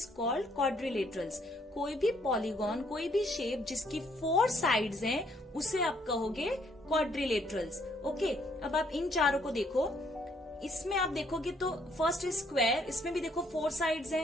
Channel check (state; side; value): normal; both; correlation 0.68